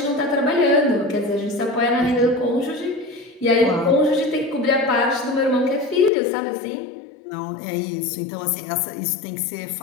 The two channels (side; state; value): right; drops out; at 6.1 s